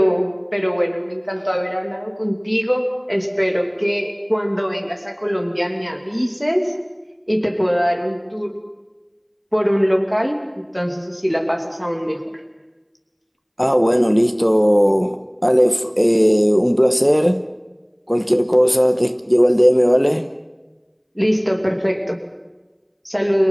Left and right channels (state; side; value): identical; both; correlation 1.00